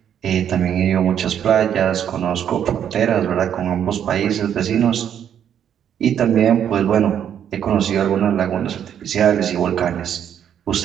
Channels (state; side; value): quieter; left; 9.3 dB